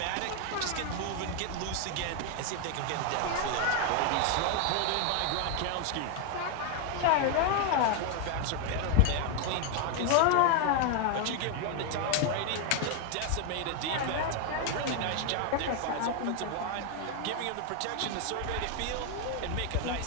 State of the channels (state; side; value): different; both; correlation 0.00